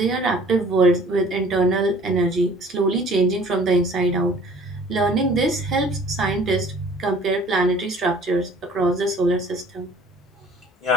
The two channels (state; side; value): normal; both; correlation 0.52